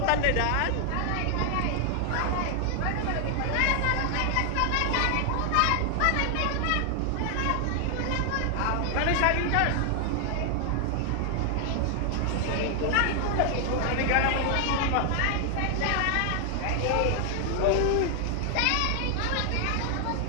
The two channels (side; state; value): both; different; correlation 0.00